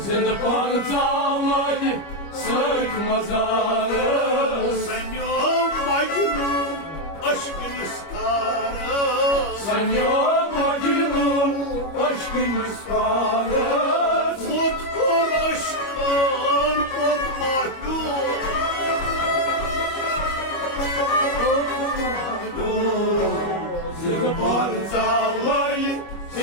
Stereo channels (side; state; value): right; late; 25 ms